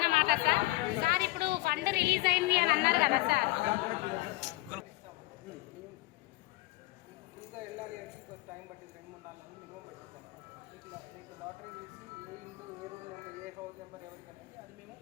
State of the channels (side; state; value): right; quieter; 20.7 dB